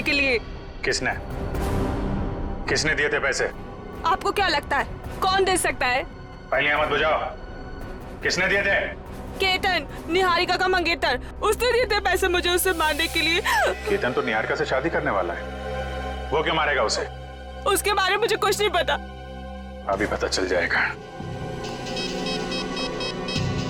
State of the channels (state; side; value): identical; both; correlation 1.00